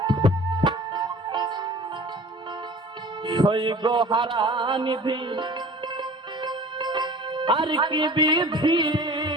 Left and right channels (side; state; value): both; normal; correlation 0.44